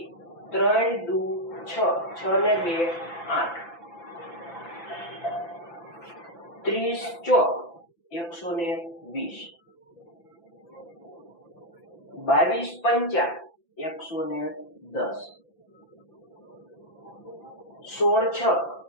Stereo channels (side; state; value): right; late; 5.9 ms